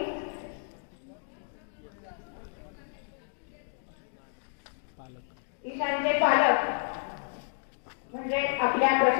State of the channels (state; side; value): silent; right; digital silence